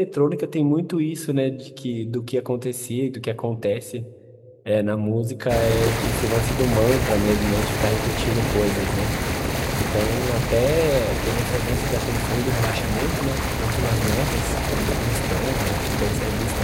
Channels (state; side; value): identical; both; correlation 1.00